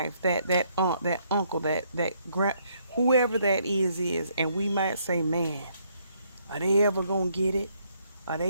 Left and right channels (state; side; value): inverted; both; correlation -0.70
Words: that aunt, that uncle, that grand, whoever that is, and we might say, man, are they ever gonna get it? Are